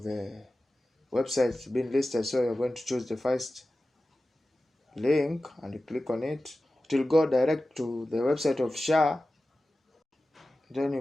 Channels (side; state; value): both; normal; correlation 0.95